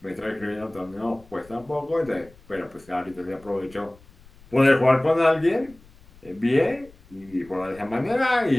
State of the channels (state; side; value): noise; left; rumble, 25 dB below the sound